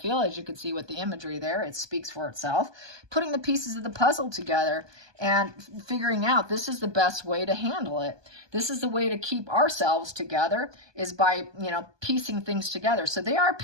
As you can see with the imagery there, it speaks for itself. Putting the pieces of the puzzle together and figuring out this is the best way to handle it. This is the way to keep ourselves together is by, piecing things together. So they are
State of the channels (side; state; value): left; late; 1.2 ms